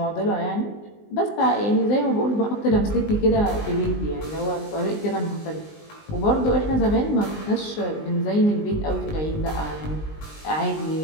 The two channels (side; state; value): right; late; 19 ms